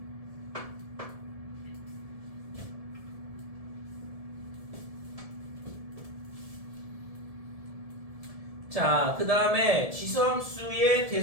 자, 그 다음에 지수함수의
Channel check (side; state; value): left; late; 1.7 ms